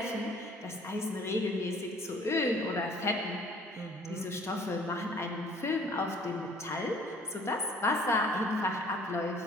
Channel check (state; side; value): normal; both; correlation 0.55